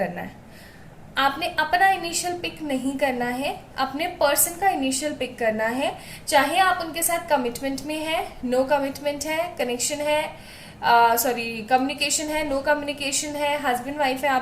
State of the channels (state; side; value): identical; both; correlation 1.00